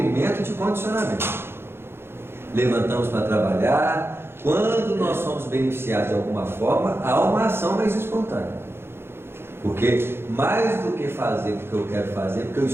de condicionamento. Levantamos para trabalhar. Quando nós somos beneficiados de alguma forma, há uma ação mais espontânea. Porque mais do que fazer porque eu quero fazer, porque eu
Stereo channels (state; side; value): late; left; 0.11 ms